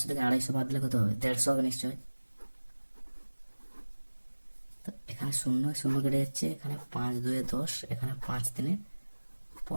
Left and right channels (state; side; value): inverted; both; correlation -1.00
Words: থেকে 250 বাদ দিলে কত হবে? 150 হবে নিশ্চয়। তো এখানে শূন্য শূন্য কেটে যাচ্ছে, এখানে 5 2 10, এখানে 5 3